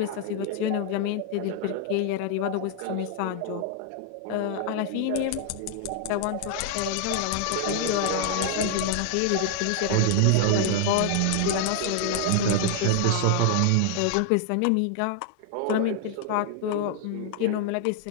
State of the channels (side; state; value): both; different; correlation 0.00